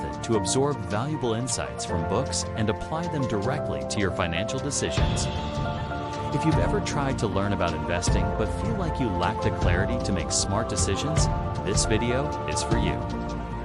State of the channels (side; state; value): both; identical; correlation 1.00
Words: to absorb valuable insights from books and apply them directly to your financial decisions. If you've ever tried to learn about investing but feel like you lack the clarity to make smart decisions, this video is for you.